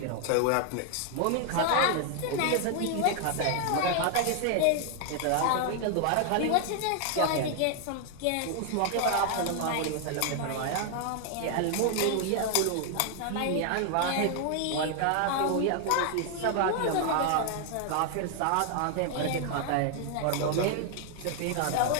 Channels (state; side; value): different; both; correlation 0.00